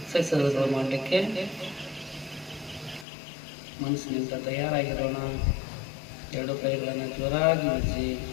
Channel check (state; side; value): drops out; right; at 3.1 s